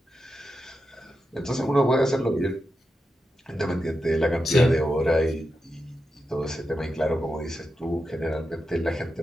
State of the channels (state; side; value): normal; both; correlation 0.88